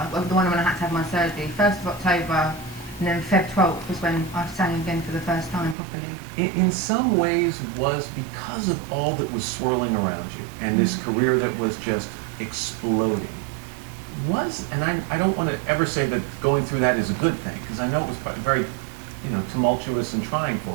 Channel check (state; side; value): drops out; left; at 5.8 s